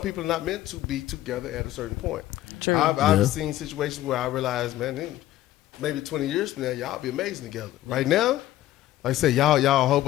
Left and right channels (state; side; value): quieter; right; 14.4 dB